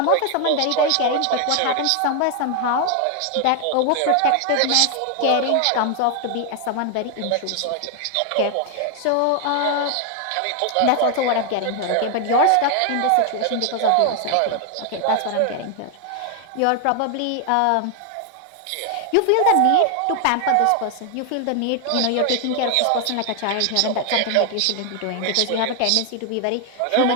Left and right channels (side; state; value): both; different; correlation 0.00